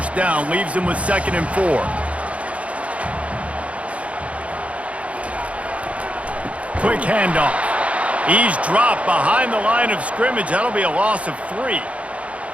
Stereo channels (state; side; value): late; left; 0.064 ms